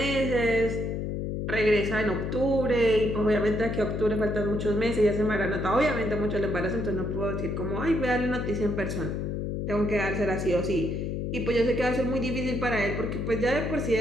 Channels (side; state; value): left; noise; hum, 2 dB below the sound